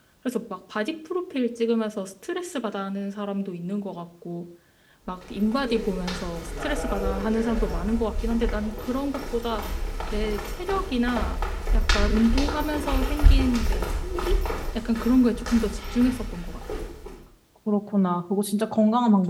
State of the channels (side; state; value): both; identical; correlation 1.00